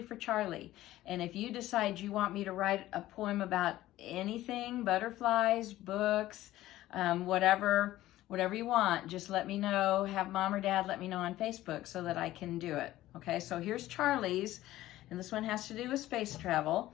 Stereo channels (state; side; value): quieter; right; 15.3 dB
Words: for Charlie. And if you decide you want me to write a poem about anything, butterflies, books, whatever you want, just let me know. Have mom or dad let me know on Facebook so that I can do it. Okay, so here's Charlie's, and this one has to do with space